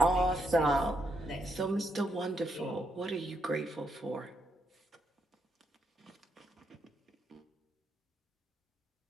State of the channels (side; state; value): both; normal; correlation 0.79